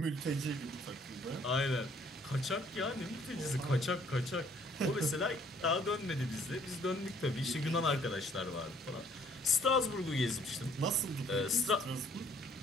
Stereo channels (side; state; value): both; normal; correlation 0.61